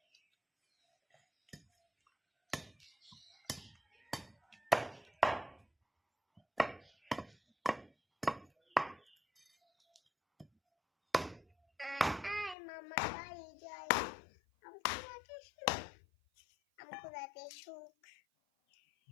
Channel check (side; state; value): right; drops out; at 12.6 s